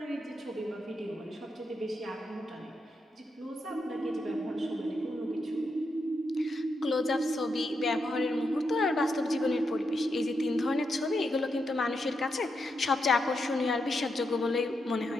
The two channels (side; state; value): both; normal; correlation 0.83